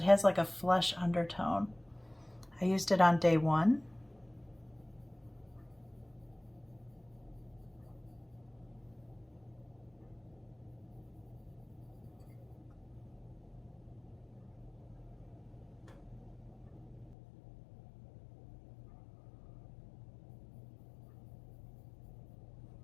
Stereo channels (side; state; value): right; drops out; at 17.2 s